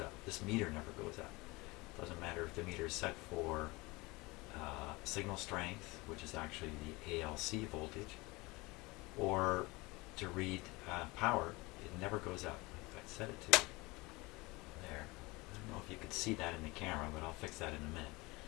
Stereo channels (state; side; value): quieter; right; 23.6 dB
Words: This meter never goes up. Doesn't matter if the meter is set for signal strength, which is actually the ALC voltage, or to read power. It never goes up. If I set it to there, I don't know if you could see that in the camera, but I'll fix that in a minute.